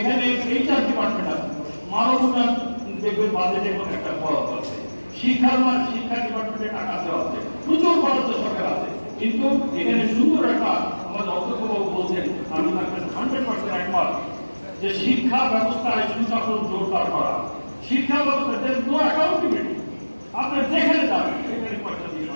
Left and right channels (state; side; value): inverted; both; correlation -1.00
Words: এইচআর ডিপার্টমেন্ট আছে, মানব উন্নয়ন দেখবেন বাজেটে একটা খরচ আছে, শিক্ষা ডিপার্টমেন্টে টাকা দেওয়া আছে, প্রচুর বরাদ্দ সরকার আছে, কিন্তু এখানে সুন্দর একটা আমাদের অধ্যক্ষবাবু বলছেন, আমি তাকে 100% একমত, যে শিক্ষা ব্যবস্থায় সুশাসন জোরদার করা। শিক্ষা ব্যবস্থা নো অ্যাকাউন্টেবিলিটি, আপনি যেখানে যাবেন সেখানে পয়সা দিয়ে